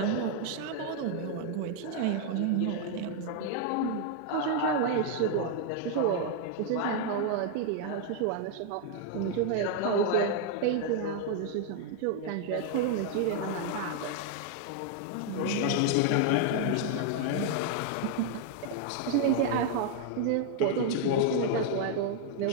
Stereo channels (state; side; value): different; both; correlation 0.00